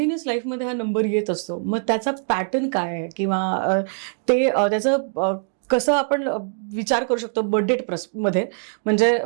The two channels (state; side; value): silent; left; 58 dB below the other